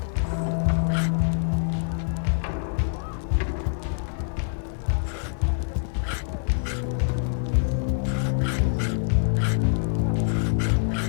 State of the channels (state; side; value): silent; right; 56 dB below the other